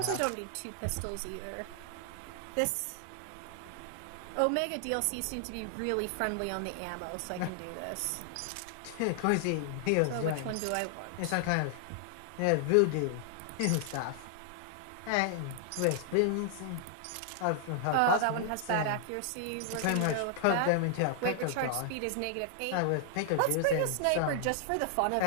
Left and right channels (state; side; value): different; both; correlation 0.00